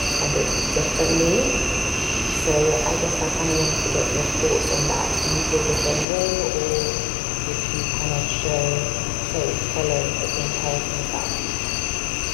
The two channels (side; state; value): right; drops out; at 6.1 s